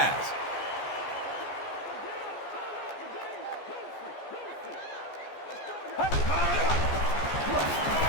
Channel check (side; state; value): right; late; 14 ms